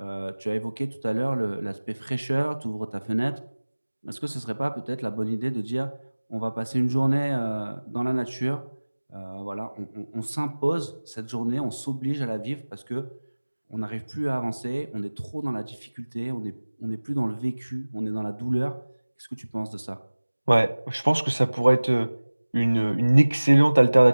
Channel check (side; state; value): both; inverted; correlation -1.00